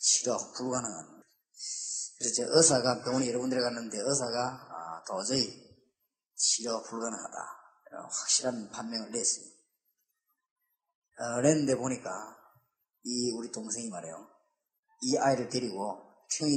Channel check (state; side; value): identical; both; correlation 1.00